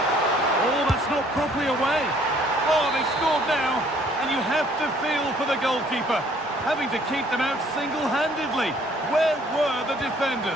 Oh, that's not properly away. Oh, they've scored now, and you have to feel for the goalkeeper, having to keep them out single-handedly. Where were the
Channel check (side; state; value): both; normal; correlation 0.60